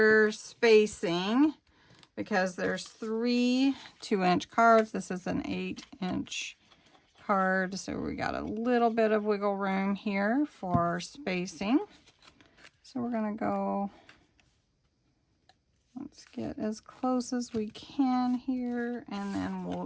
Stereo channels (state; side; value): identical; both; correlation 1.00